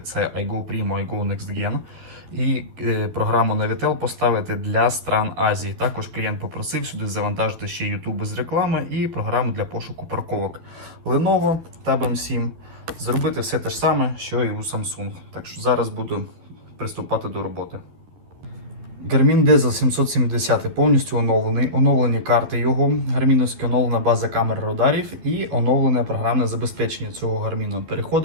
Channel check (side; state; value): left; late; 12 ms